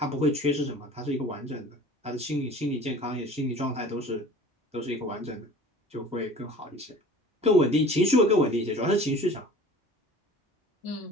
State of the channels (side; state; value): both; normal; correlation 0.44